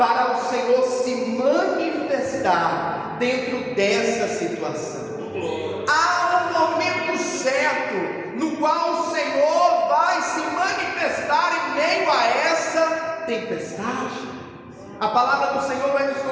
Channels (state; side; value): identical; both; correlation 1.00